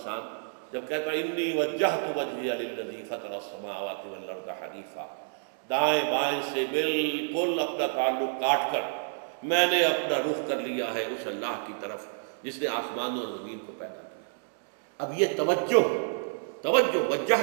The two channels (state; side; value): silent; left; digital silence